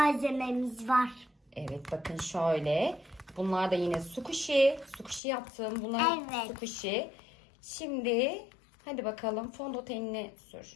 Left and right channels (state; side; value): drops out; right; at 5.2 s